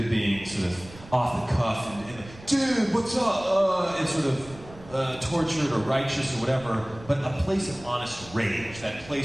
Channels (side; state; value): right; noise; rumble, 19 dB below the sound